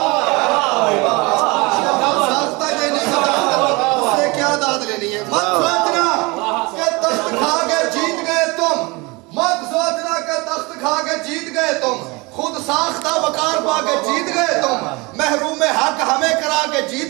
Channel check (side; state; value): left; quieter; 25.5 dB